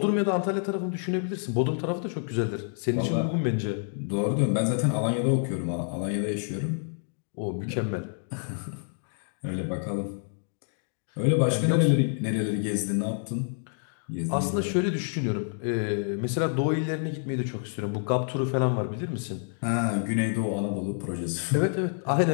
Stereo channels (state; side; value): silent; right; digital silence